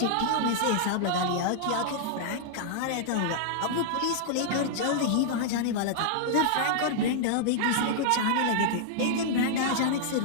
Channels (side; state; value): both; different; correlation -0.01